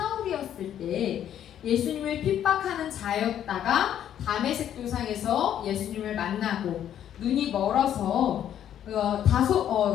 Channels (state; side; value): quieter; right; 10.3 dB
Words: 때 예수님을 핍박하는 자였다가 다메섹 도상에서 예수님을 만나고 눈이 멀어서